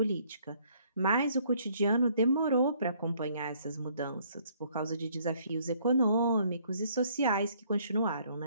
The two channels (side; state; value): both; inverted; correlation -0.63